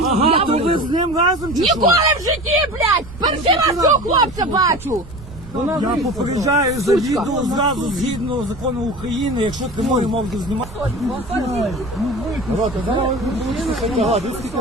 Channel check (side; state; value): right; noise; rumble, 16 dB below the sound